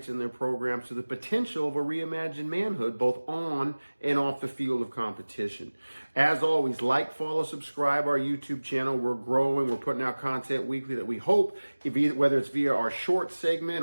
in their programs to the potential of a reimagined manhood, both on and off the field of competition. As always, like, follow, subscribe our YouTube channel. We're growing. We're putting out content weekly that we hope, whether it's via our short segment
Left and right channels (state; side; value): inverted; both; correlation -1.00